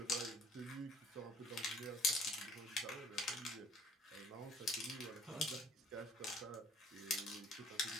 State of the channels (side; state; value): both; normal; correlation 0.54